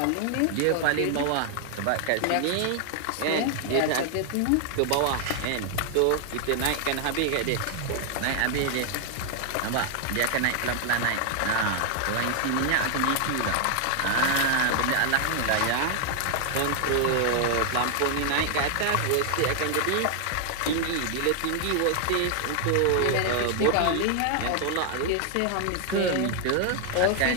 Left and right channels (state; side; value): different; both; correlation 0.00